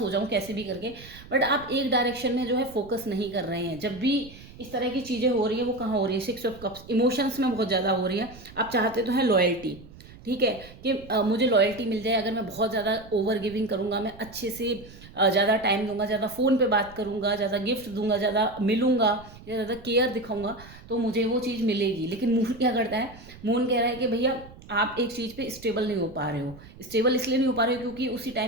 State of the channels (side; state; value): right; noise; rumble, 19 dB below the sound